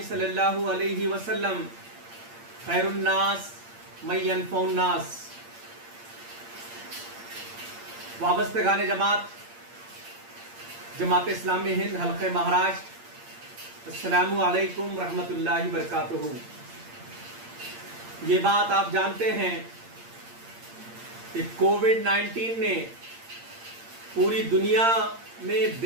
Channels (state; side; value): late; left; 8.7 ms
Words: सल्लल्लाहु अलैहि वसल्लम खैरुन्नास मन यनफ़उन्नास। वाबस्तगान जमात जमात इस्लामी हिंद हल्क़े महाराष्ट्र, अस्सलामु अलैकुम रहमतुल्लाहि बरकातुहू। ये बात आप जानते हैं कि कोविड-19 ने पूरी दुनिया में